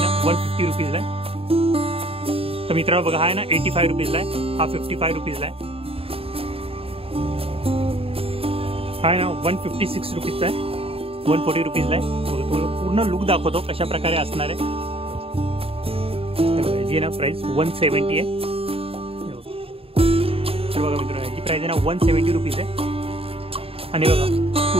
150 रुपीजला आहे. तर मित्रांनो बघा हा आहे ना 85 रुपीजला आहे, हा 55 रुपीजला आहे. हा आहे ना 156 रुपीजचा आहे, 140 रुपीजला आहे. बघा तुम्हाला पूर्ण लुक दाखवतो कशा प्रकारे असणार आहे. जी ना प्राइस 170 आहे. तर बघा मित्रांनो याची प्राइस आहे ना 170 रुपीज आहे. आणि बघा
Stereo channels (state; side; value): late; left; 0.27 ms